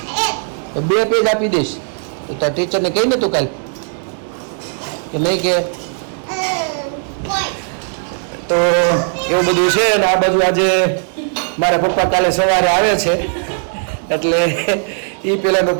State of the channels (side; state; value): left; silent; 67 dB below the other